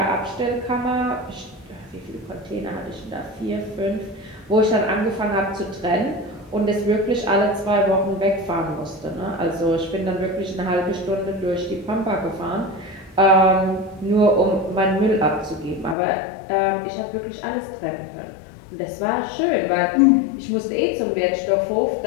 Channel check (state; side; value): drops out; right; at 16.0 s